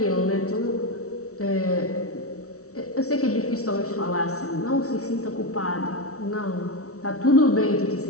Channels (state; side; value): late; right; 0.64 ms